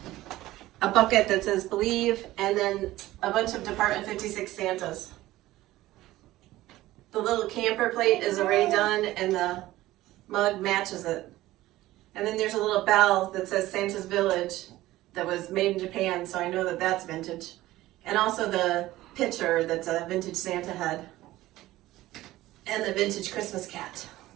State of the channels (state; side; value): quieter; left; 16.5 dB